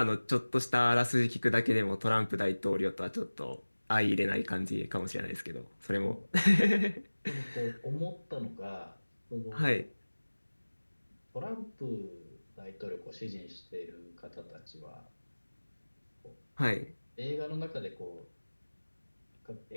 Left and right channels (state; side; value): inverted; both; correlation -1.00